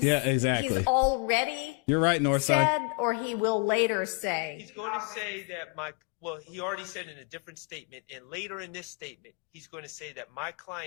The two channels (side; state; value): right; quieter; 36.7 dB